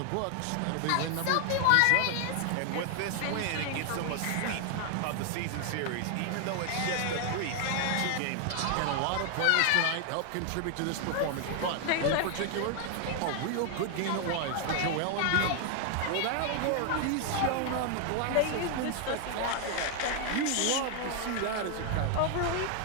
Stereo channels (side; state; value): both; different; correlation 0.00